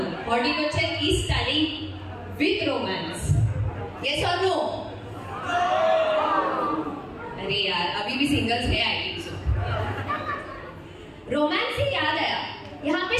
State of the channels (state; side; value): identical; both; correlation 1.00